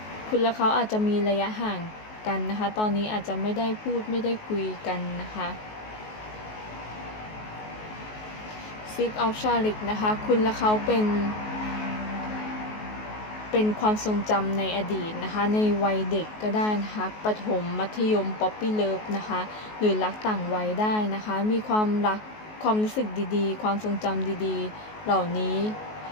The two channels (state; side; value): late; right; 19 ms